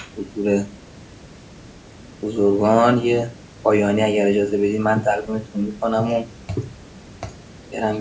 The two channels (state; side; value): identical; both; correlation 1.00